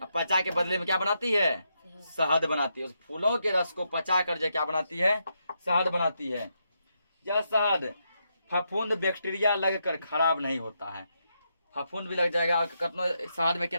पचा के बदले में क्या बनाती है? शहद बनाती है। उस फूलों के रस को पचा कर जो क्या बनाती है? शहद बनाती है। यह शहद फफूंद बैक्टीरिया लगकर खराब नहीं होता है। फफूंद भी लग जाएगा, शहद में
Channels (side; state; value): both; inverted; correlation -0.81